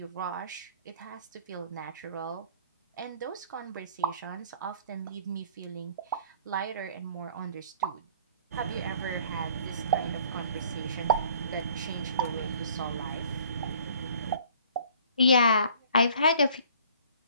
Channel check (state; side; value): inverted; both; correlation -0.53